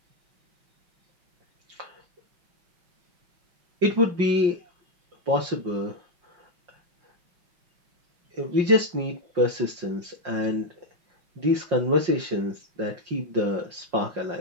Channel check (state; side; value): late; left; 5.6 ms